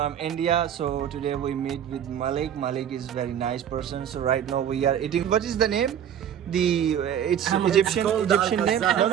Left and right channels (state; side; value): quieter; left; 9.4 dB